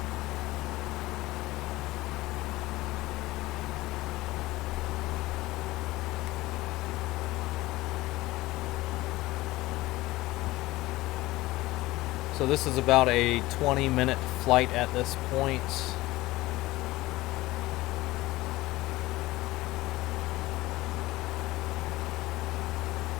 So this is about a 20-minute flight at this point.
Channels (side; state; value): right; quieter; 18.6 dB